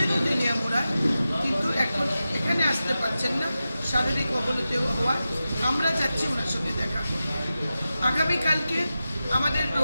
তেলিয়ামুড়ায়, কিন্তু এখন এখানে আসতে পারছেন না শারীরিক অবনতি হওয়ায়। আমরা যাচ্ছি ওনার সঙ্গে দেখা করতে। আগামীকালকে আমাদের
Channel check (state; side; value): inverted; both; correlation -0.93